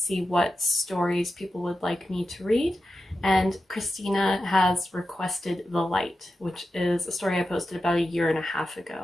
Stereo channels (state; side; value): normal; both; correlation 0.90